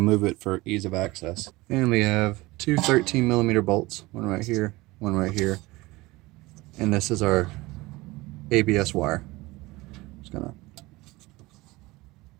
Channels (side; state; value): left; quieter; 21.0 dB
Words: it for ease of access. And we have two 13mm bolts, one right here, one right here. And this is our ABS wire. Just going to